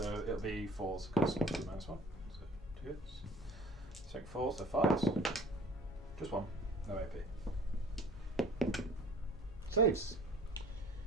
it'll be 4s because -1. So 2 hits. Strength 4, so 5s. Just 1. No AP. Saves.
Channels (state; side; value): normal; both; correlation 0.48